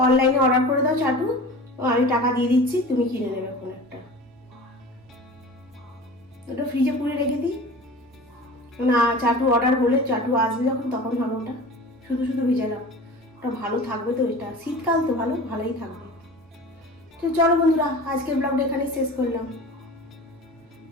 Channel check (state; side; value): normal; both; correlation 0.37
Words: অনলাইনে অর্ডার করে দাও চাটু, আমি টাকা দিয়ে দিচ্ছি, তুমি কিনে নেবে কোন একটা। ওটা ফ্রিজে পুরে রেখে দিই, না চাটু অর্ডার হলে চাটু আসবে যখন তখন হবে ওটা, শুধু শুধু ভিজালাম, ওটা ভালো থাকবে তো, এটা শীতকাল তো ভালোই থাকবে। তো চলো বন্ধুরা, আজকের ব্লগটা এখানে শেষ করলাম।